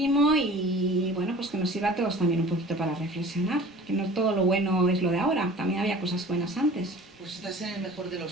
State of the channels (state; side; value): normal; both; correlation 0.44